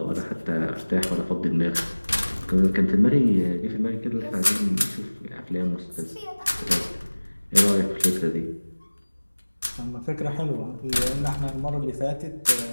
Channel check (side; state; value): both; inverted; correlation -1.00